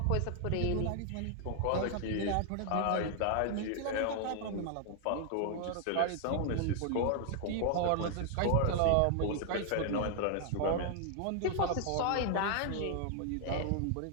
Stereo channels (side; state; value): both; different; correlation 0.00